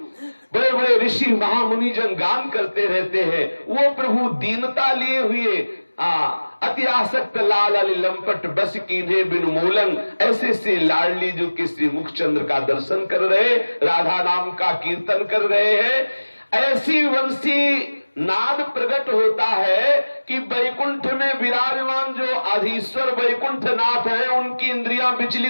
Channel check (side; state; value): both; inverted; correlation -1.00